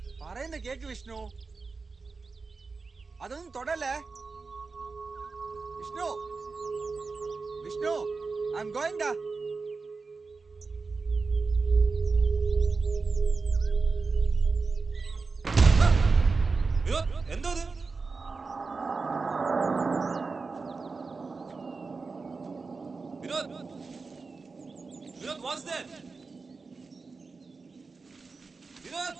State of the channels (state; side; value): quieter; left; 4.3 dB